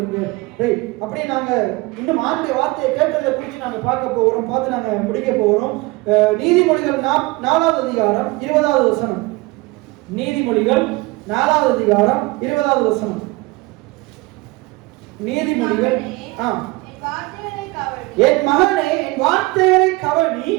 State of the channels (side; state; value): left; quieter; 22.5 dB